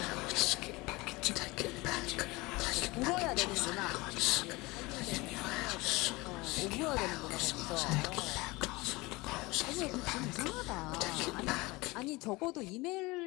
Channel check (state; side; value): quieter; right; 22.7 dB